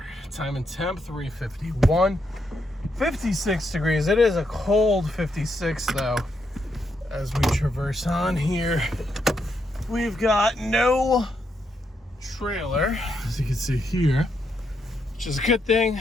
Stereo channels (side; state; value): both; normal; correlation 0.79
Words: Time and temp 351, 56 degrees. It is a cold 56 though. As we traverse on here, we've got no trailer, as you can see here, which is a good thing.